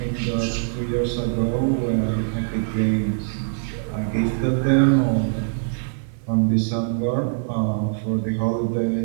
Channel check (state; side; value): silent; left; digital silence